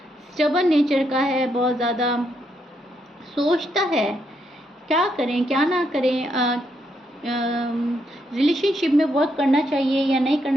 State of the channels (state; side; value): normal; both; correlation 0.78